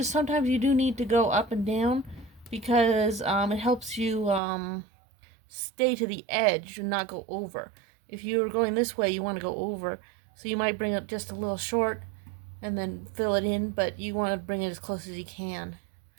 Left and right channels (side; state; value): left; drops out; at 4.4 s